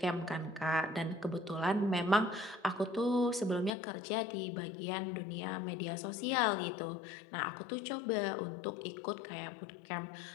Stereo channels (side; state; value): right; drops out; at 3.7 s